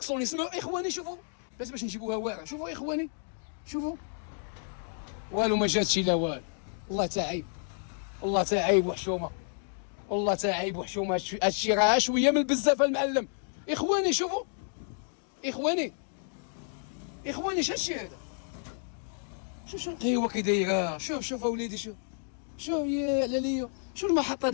سمعوا اخواني. شوفوا باش نجيبوها واعره. شوفوا اخواني والو ما جاتش لا والو. والله تا عيب وحشومه، هادشي راه شويه من بزاف المعلم. اخواني شوفوا اخواني هادشي هذا؟ شوف القهوه كي دايره، شوف اوليدي شوف يا علاليو، شوف المحطه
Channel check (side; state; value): right; silent; 57 dB below the other